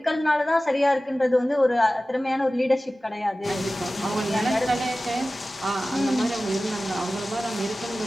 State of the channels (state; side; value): normal; both; correlation 0.96